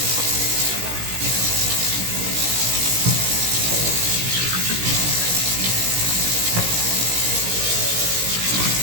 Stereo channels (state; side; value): late; left; 17 ms